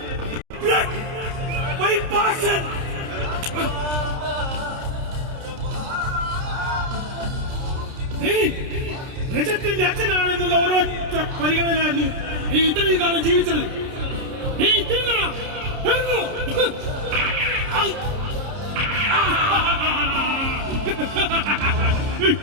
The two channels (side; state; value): left; late; 30 ms